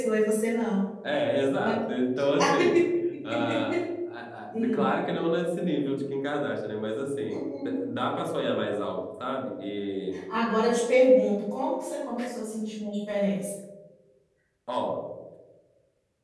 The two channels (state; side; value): identical; both; correlation 1.00